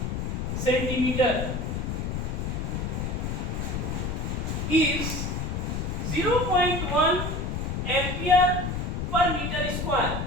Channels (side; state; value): left; noise; rumble, 2 dB below the sound